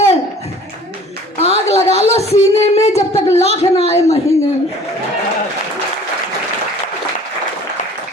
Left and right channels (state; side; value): normal; both; correlation 0.49